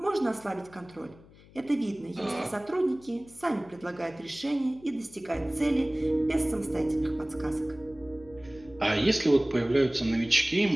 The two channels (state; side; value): noise; left; hum, 24 dB below the sound